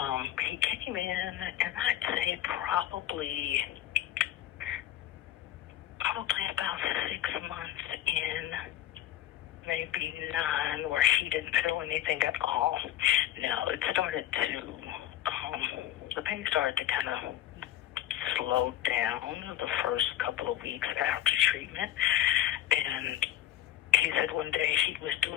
He came in, and I'd say probably about 6 months in, maybe 9, where he didn't feel anything at all. Now, it started to, the pain started to kind of slow down the first couple of weeks after treatment. And he said one day he was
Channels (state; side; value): quieter; right; 12.7 dB